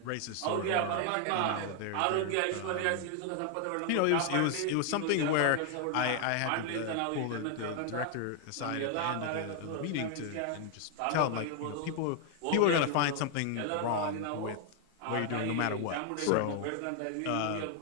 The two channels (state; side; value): different; both; correlation 0.00